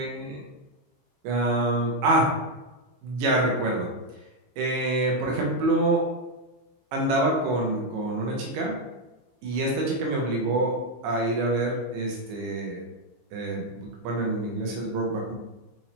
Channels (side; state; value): left; late; 15 ms